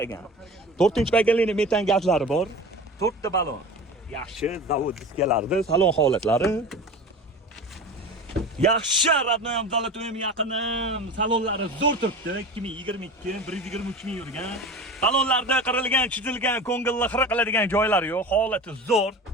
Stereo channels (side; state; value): both; normal; correlation 0.34